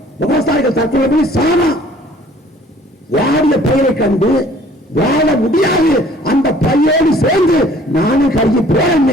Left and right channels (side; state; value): both; normal; correlation 0.55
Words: விவசாயிகள் தற்கொலை பண்ணி சாமா. வாடிய பயிரை கண்டு வாழ முடியாது, அந்த பையோடு சேர்ந்து நானும் கருகி